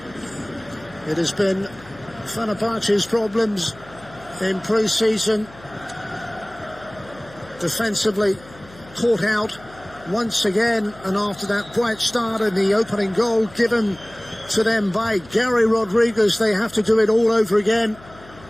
It has been Fenerbahçe's problems in pre-season. Defensively caught out once again, and after that bright start and the opening goal given to them by Gary Rodriguez, they have to do it all over again.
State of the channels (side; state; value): left; noise; hum, 22 dB below the sound